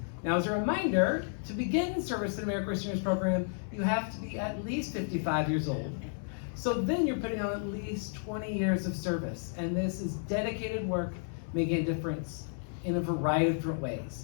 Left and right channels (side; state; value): right; silent; 56 dB below the other